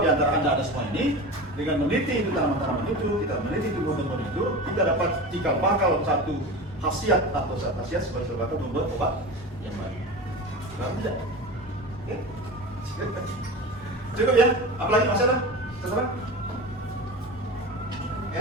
di antara Anda ada semua ini dengan meneliti itu tanaman-tanaman itu, kita meneliti tumbuhan-tumbuhan itu, kita dapat cikal bakal satu khasiat atau satu khasiat sebagai sebuah membuat obat yang baik. Benar tidak? Oke. Cukup ya? Apalagi masih ada? Terserah?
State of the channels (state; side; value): normal; both; correlation 0.30